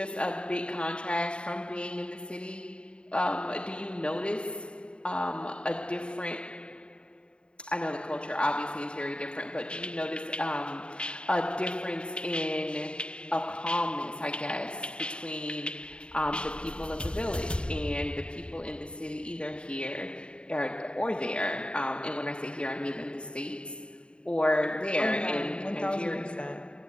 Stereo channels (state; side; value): late; right; 0.054 ms